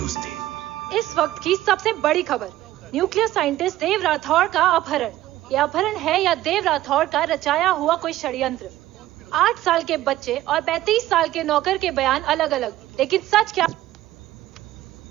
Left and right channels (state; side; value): quieter; left; 14.8 dB